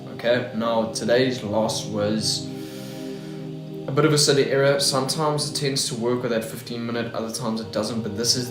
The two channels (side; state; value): both; identical; correlation 1.00